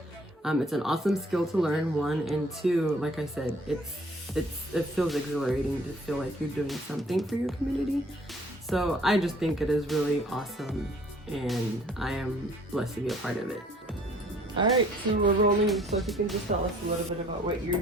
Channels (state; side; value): normal; both; correlation 0.57